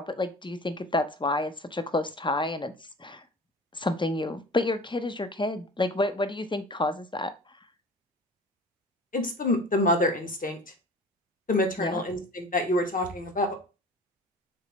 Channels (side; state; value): both; normal; correlation 0.40